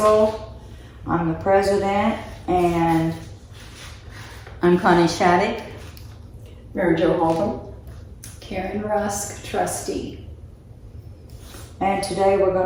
I'm the president, and I'm Connie Shattuck. Mary Jo Halton. Karen Rusk, trustee. today we're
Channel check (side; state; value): both; identical; correlation 1.00